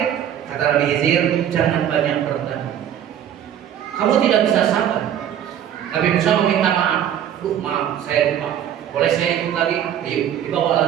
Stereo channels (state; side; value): quieter; left; 10.1 dB